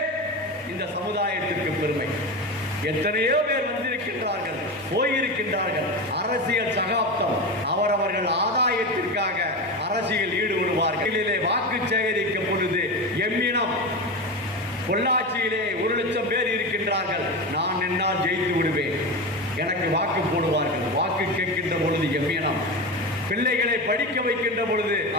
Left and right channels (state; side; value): normal; both; correlation 0.22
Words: இந்த சமுதாயத்திற்கு பெருமை. எத்தனையோ பேர் வந்திருக்கின்றார்கள், போயிருக்கின்றார்கள். அரசியல் சகாப்தம், அவரவர்கள் ஆதாயத்திற்காக அரசியல் ஈடுபடுவார்கள். வாக்கு சேகரிக்கும் பொழுது எம்மினம் பொள்ளாச்சியிலே 1,00,000 பேர் இருக்கின்றார்கள், நான் என்னால் ஜெயித்து விடுவேன், எனக்கு வாக்கு போடுவார்கள். வாக்கு கேட்கின்ற பொழுது எம்மினம், பிள்ளைகளை படிக்க வைக்கின்ற பொழுது